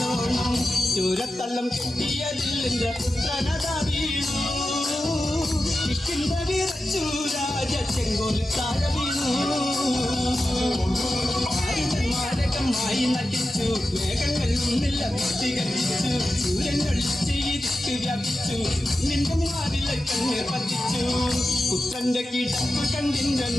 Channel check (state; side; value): normal; both; correlation 0.92